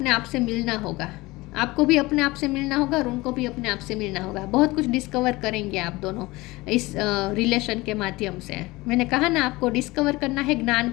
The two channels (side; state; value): right; quieter; 21.2 dB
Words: आप से मिलना होगा। आपको भी अपने आप से मिलना होगा और उनको भी अपने आप से मिलना होगा। बहुत कुछ डिस्कवर करेंगे आप दोनों इस रिलेशन के माध्यम से। मैंने कहा ना, आपको डिस्कवर करना है, ज्ञान